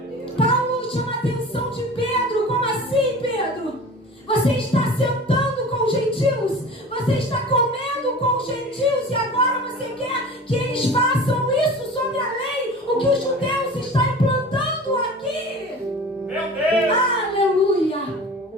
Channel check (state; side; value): normal; both; correlation 0.38